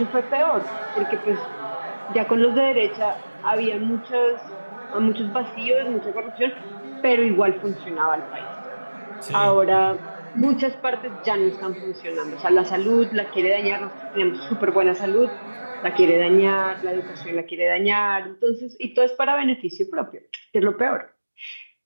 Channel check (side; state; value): both; inverted; correlation -1.00